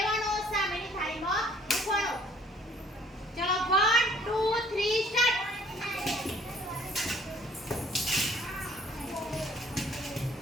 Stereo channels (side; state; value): both; normal; correlation 0.59